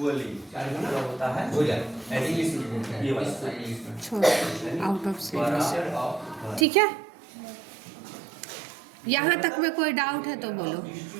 आउट ऑफ सिलेबस, ठीक है। यहाँ तक में कोई डाउट है तो बोलो,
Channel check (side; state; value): left; drops out; at 6.7 s